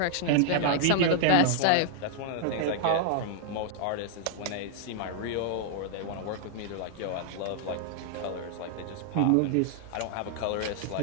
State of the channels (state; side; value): different; both; correlation -0.01